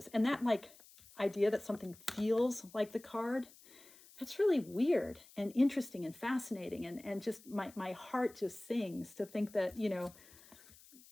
And that, like, idea that something feels like the card, that's really weird and interesting and fascinating. And just my heart just sings to think that, you know,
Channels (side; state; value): left; noise; hiss, 23 dB below the sound